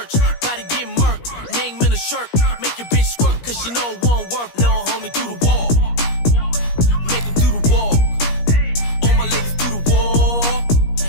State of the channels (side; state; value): right; late; 17 ms